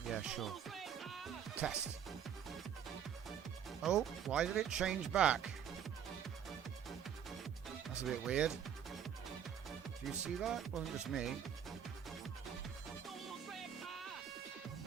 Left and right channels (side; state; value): left; quieter; 8.7 dB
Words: Yeah, sure. Test. Oh, why did it change back? That's a bit weird. Do you see that? It wasn't just me.